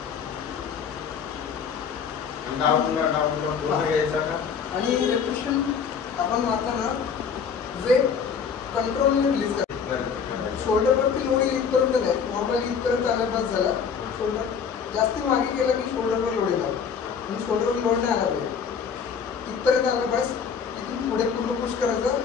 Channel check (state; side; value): quieter; right; 6.6 dB